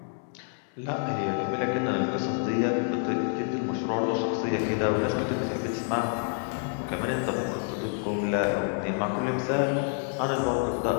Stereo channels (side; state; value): right; silent; 56 dB below the other